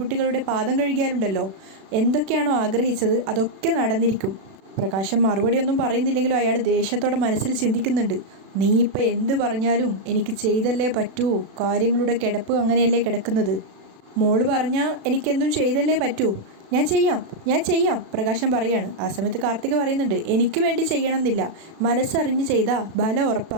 പാദം കഴുകിയാലുണ്ടല്ലോ, എന്തൊക്കെയാണോ ആഗ്രഹിച്ചത് അതൊക്കെ നടന്നിരിക്കും. പ്രകാശം മറുപടിയൊന്നും പറയുന്നില്ലെങ്കിലും അയാൾ ദേഷ്യത്തോടെ മനസ്സിൽ ചിന്തിക്കുന്നുണ്ട്. നീ ഇപ്പം എന്ത് പറഞ്ഞാലും എനിക്ക് ചെയ്തല്ലേ പറ്റൂ, കാര്യങ്ങളുടെ കിടപ്പ് അങ്ങനെയല്ലേ കിടക്കുന്നത്. മോള് പറഞ്ഞാൽ എനിക്കെന്തും ചെയ്തല്ലേ പറ്റൂ. ഞാൻ ചെയ്യാം പ്രകാശം പറയാണ്. ആ സമയത്ത് കാർത്തിക പറയുന്നുണ്ട്, എനിക്ക് വേണ്ടി ചെയ്യണമെന്നില്ല, മനസ്സറിഞ്ഞ് ചെയ്താൽ ബലം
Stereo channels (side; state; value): left; late; 36 ms